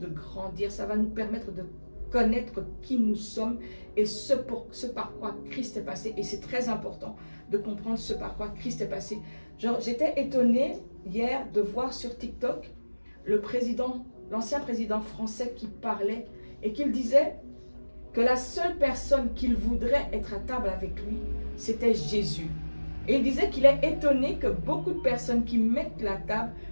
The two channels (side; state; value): both; inverted; correlation -1.00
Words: grandir, ça va nous permettre de connaître qui nous sommes et ce par quoi Christ est passé. Et c'est très important de comprendre ce par quoi Christ est passé. J'étais étonnée hier de voir sur TikTok l'ancien président français qui parlait et qu'il disait que la seule personne qu'il voudrait être à table avec lui, c'était Jésus. Et il disait qu'il est étonné que beaucoup de personnes qui mettent la table